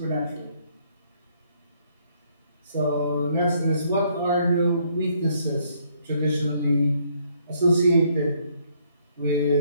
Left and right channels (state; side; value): inverted; both; correlation -0.68